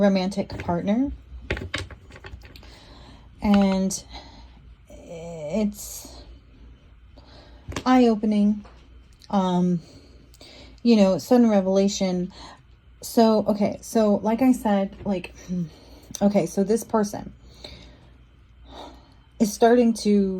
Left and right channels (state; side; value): identical; both; correlation 1.00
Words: partner. And it's eye-opening, you know, sudden revelation. So, okay, so like I said, like, okay, so this person is starting